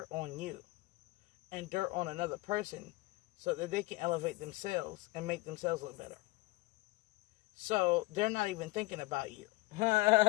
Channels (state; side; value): quieter; right; 21.2 dB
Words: on you and dirt on another person so that they can elevate themselves and make themselves look better. So, they're not even thinking about you.